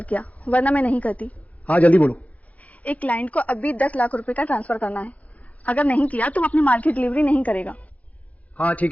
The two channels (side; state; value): right; late; 0.069 ms